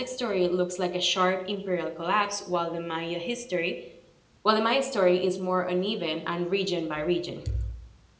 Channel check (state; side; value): identical; both; correlation 1.00